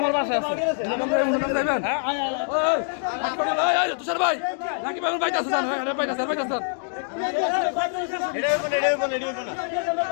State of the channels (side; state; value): right; silent; digital silence